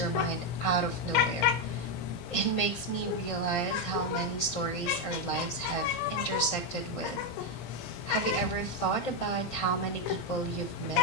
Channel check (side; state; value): right; late; 17 ms